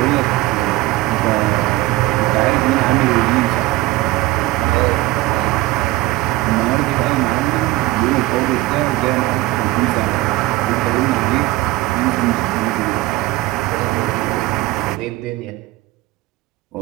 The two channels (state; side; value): quieter; left; 17.9 dB